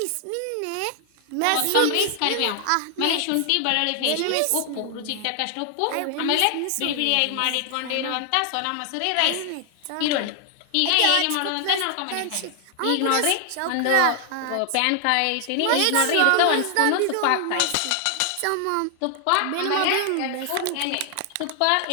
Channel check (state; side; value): different; both; correlation 0.00